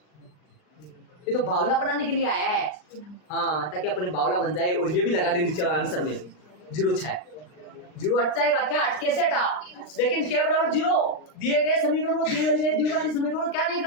ये तो बावला बनाने के लिए आया है। हाँ ताकि अपने बावला बन जाए, और ये भी लगा दे नीचे आंसर में 0 हट जाएगा, क्या कैसे हटा, लेकिन के बराबर 0 दिए गए समीकरण को, दिए गए द्विघाती समीकरण को क्या नहीं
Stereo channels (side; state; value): right; late; 39 ms